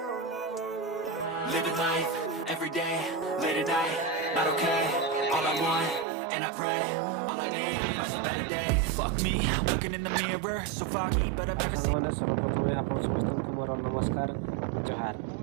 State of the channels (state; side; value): drops out; left; at 6.1 s